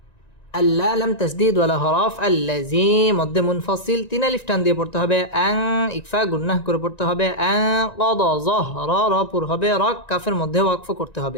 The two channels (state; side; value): late; right; 1.9 ms